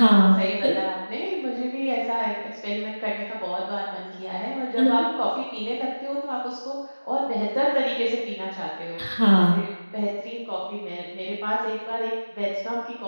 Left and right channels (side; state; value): both; inverted; correlation -1.00